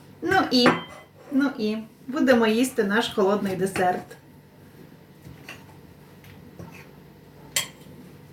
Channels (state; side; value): identical; both; correlation 1.00